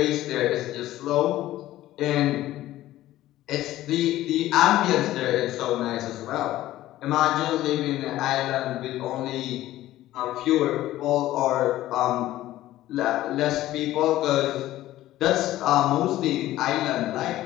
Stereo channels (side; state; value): right; quieter; 14.9 dB